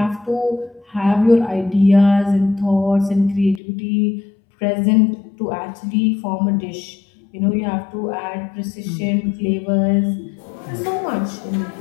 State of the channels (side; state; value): right; drops out; at 3.6 s